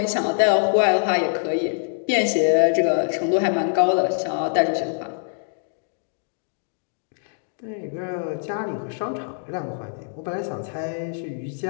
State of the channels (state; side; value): silent; right; digital silence